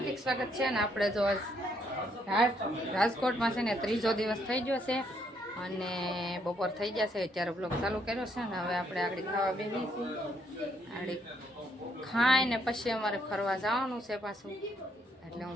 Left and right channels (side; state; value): both; normal; correlation 0.72